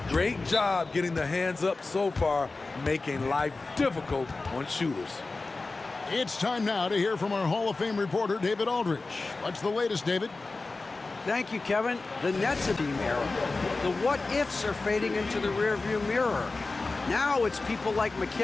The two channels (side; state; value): right; quieter; 3.6 dB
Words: Great job getting the hands up so far, making life difficult on shooters. It's time now to hear from our Hall of Fame reporter, David Aldridge. What's the latest, David? Thank you, Kevin. The Nets are being era. The what-ifs are fading into the rearview mirror. Now it's people like